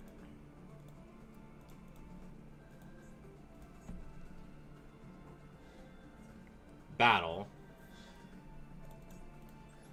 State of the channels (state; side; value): identical; both; correlation 1.00